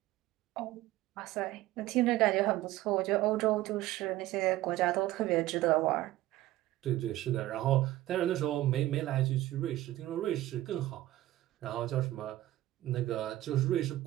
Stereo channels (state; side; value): quieter; left; 15.8 dB